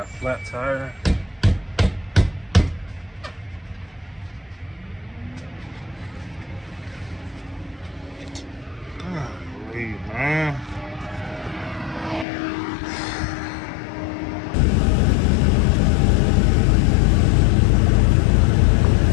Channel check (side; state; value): right; drops out; at 12.2 s